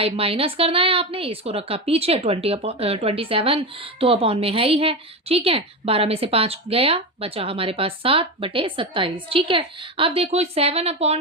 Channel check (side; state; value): both; normal; correlation 0.18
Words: माइनस करना है आपने, इसको रखा पीछे, 27 तो अपॉन में है ही है। ठीक है, 12 में से 5 गया, बचा हमारे पास 7/27। ठीक है, अब देखो